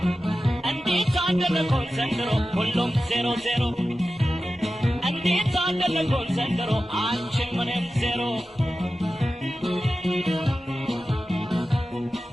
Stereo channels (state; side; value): normal; both; correlation 0.94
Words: እንዴት አደረኮን ዘንድሮ ሁሉም 00 እንዴት አደረኮን ዘንድሮ አንቺም እኔም 0